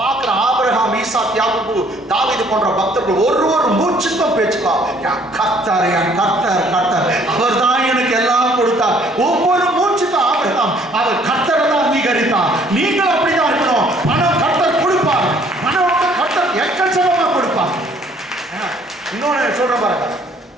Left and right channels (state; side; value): normal; both; correlation 0.60